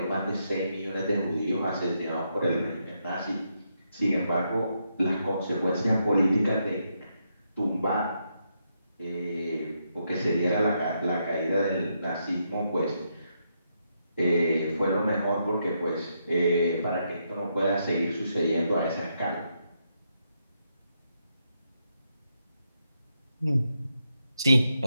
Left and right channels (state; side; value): inverted; both; correlation -0.80